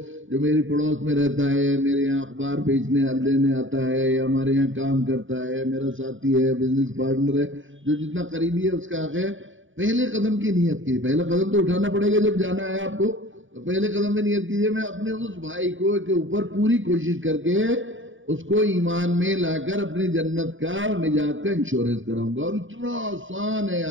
جو میری پڑوس میں رہتا ہے، میرے یہاں اخبار بیچنے لینے آتا ہے یا ہمارے یہاں کام کرتا ہے، میرا ساتھی ہے، بزنس پارٹنر ہے، جو جتنا قریبی ہے اس کا حق ہے. پہلے قدم کی نیت کی. پہلا قدم تو اٹھانا پڑے گا جب جانا ہے آپ کو. تو پہلے قدم میں نیت کیجئے میں اپنے اس بھائی کو کے اوپر پوری کوشش کر کے اس کو ایمان میں لا کر اپنی جنت کا اور نجات کا انشورنس کراؤں گا. اور اتنا آسان ہے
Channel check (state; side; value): late; left; 0.56 ms